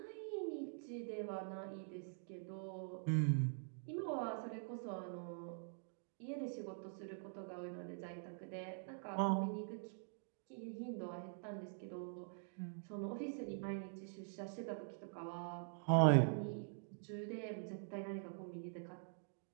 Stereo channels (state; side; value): silent; left; digital silence